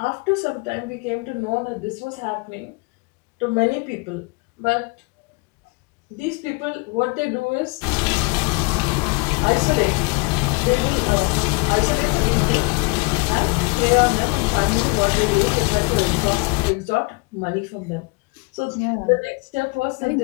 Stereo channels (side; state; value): right; quieter; 29.4 dB